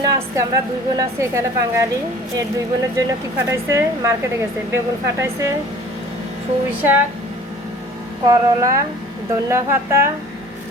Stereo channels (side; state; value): both; normal; correlation 0.47